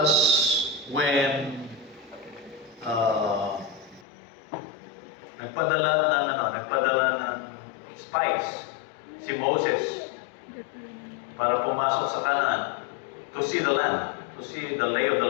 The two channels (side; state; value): right; drops out; at 4.0 s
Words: when nagpadala ng spies si Moses para pumasok sa Canaan to see the land, to see the lay of the